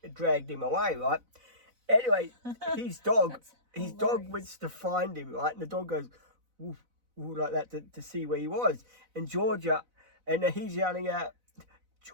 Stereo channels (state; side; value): late; left; 4.0 ms